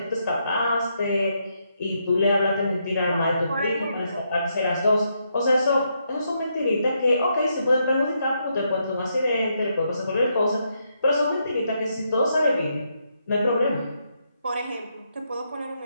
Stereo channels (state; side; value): inverted; both; correlation -0.79